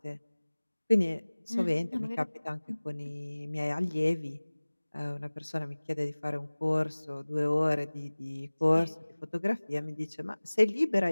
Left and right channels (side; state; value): both; inverted; correlation -1.00